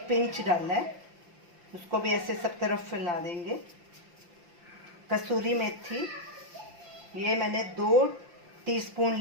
पिंच डाला है। उसको भी ऐसे सब तरफ फैला देंगे। कसूरी मेथी ये मैंने 2 टीस्पून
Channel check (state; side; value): late; left; 5.8 ms